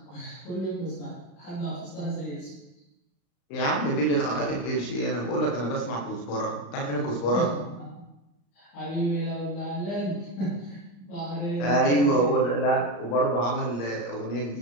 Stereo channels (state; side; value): late; right; 35 ms